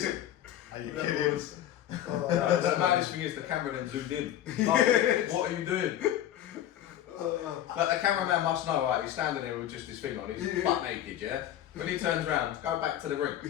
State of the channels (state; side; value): quieter; right; 11.8 dB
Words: Are you kidding? The maddest thing is the camera then zoomed in. What are you doing? Like the cameraman must know, right? He's standing there with just his thing on. He's butt naked, yeah? When he turns around, go back to the